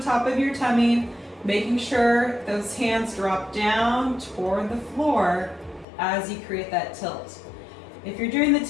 top of your tummy, making sure those hands drop down toward the floor as you create that tilt. If you're doing the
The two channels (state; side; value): drops out; right; at 5.9 s